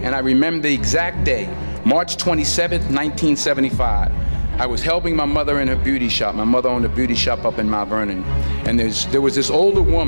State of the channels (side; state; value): both; inverted; correlation -1.00